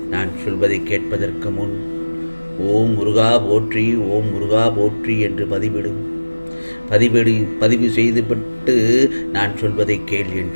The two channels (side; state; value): both; inverted; correlation -1.00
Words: நான் சொல்வதை கேட்பதற்கு முன் ஓம் முருகா போற்றி, ஓம் முருகா போற்றி என்று பதிவு செய்துவிட்டு நான் சொல்வதை கேள்